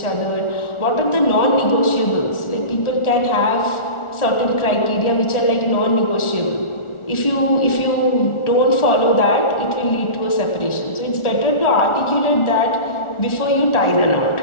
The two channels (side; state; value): right; late; 1.4 ms